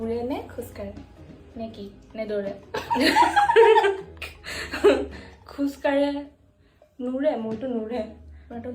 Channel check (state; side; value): identical; both; correlation 1.00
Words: নে খোজ কাঢ়ে নে কি নে দৌৰে খোজ কাঢ়ে নুৰে মোৰটো নুৰে তোমাৰটো